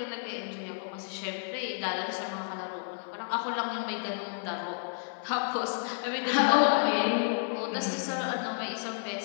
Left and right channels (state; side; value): silent; right; 57 dB below the other